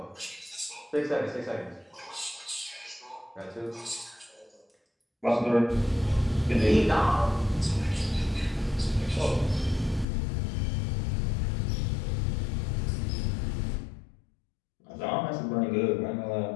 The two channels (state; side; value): drops out; right; at 10.1 s